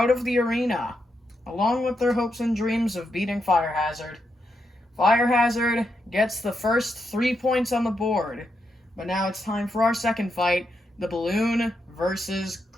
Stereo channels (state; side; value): normal; both; correlation 0.83